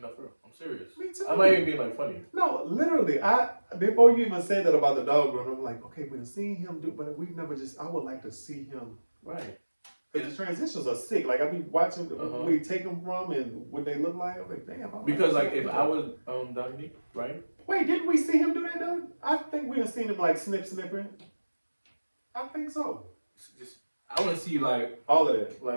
for real. I'm serious. Me too. I might even be like funny. No, literally, before you even said that about the dog run, I'm like, okay, we've seen him do, but we've never just. I would like to see him. Right. Because the transitions are sick. Like I be watching where you take them from and what they look like. I'm like, damn. Because like if I was Dominique, right? Wait, didn't we see him do that though? I think we done seen him like snipping. I think so. Just I want to see like all of that,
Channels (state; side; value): inverted; both; correlation -1.00